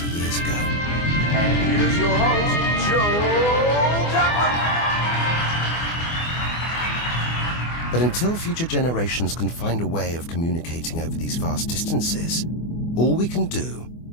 years ago. And here's your host, Joe Duckman. But until future generations can find a way of communicating over these vast distances, all we can do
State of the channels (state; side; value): late; right; 24 ms